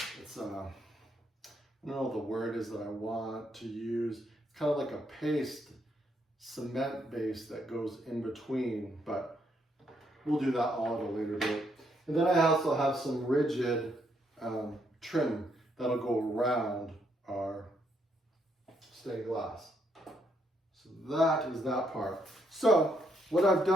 don't know what the word is that I want to use. It's kind of like a paste, cement base that goes in between, but we'll do that all at a later date. And then I also have some rigid trim that'll go around our stained glass. So that is that part. So what I've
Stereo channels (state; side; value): normal; both; correlation 0.74